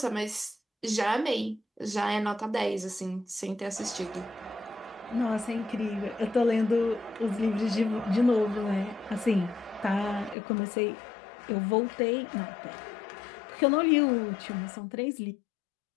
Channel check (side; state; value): right; drops out; at 10.4 s